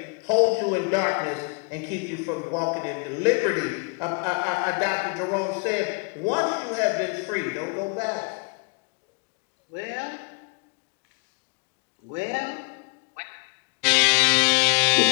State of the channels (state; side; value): quieter; right; 35.3 dB